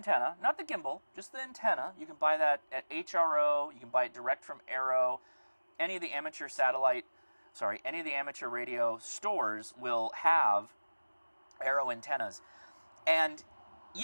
not the gimbal, just the antenna. You can buy that at HRO. You can buy it direct from Arrow. Any of the amateur radio stores will have Arrow antennas. And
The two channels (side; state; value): both; inverted; correlation -1.00